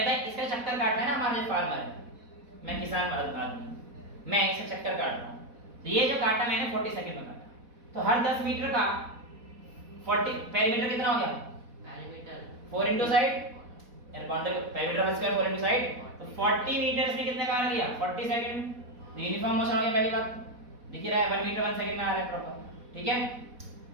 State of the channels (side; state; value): left; late; 4.1 ms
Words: है इसका चक्कर काटना है ना, हमारा जो फार्मर है, मैं किसान आदमी, मैं इसका चक्कर काट रहा हूँ, तो ये जो काटा मैंने 40 सेकंड में काटा, तो हर 10 मीटर का 40 पेरीमीटर कितना हो गया? पेरीमीटर 4 इनटू साइड, यानी बाउंड्री पेरीमीटर का स्क्वायर 4 इनटू साइड, तो 40 मीटर्स में कितने का आ गया? 40 सेकंड। तो यूनिफॉर्म मोशन हो गया, पहली बात दिख रहा है 1 मीटर 1 सेकंड में आ रहा है प्रॉपर, ठीक है।